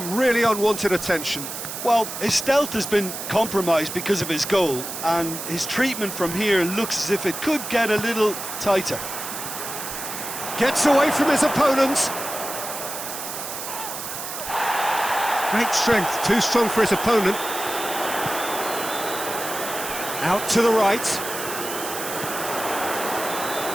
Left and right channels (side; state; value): right; noise; hiss, 7 dB below the sound